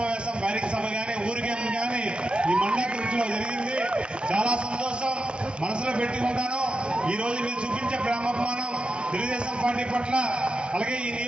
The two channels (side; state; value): left; late; 0.057 ms